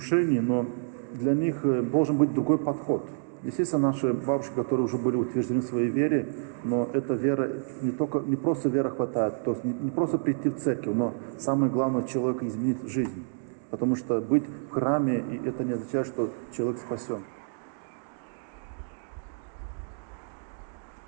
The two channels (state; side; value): silent; left; digital silence